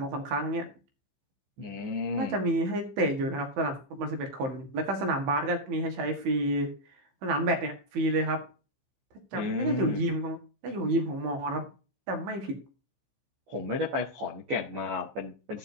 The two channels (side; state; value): left; late; 15 ms